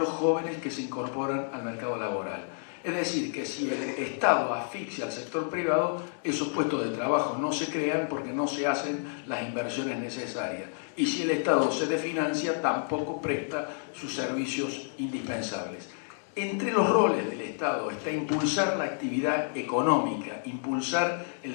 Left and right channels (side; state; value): right; silent; digital silence